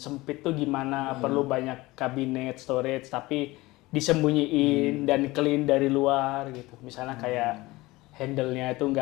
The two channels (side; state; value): right; quieter; 20.4 dB